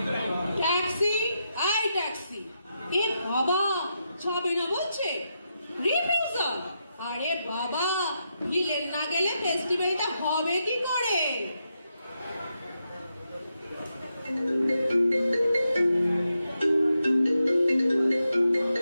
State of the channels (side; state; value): both; inverted; correlation -0.84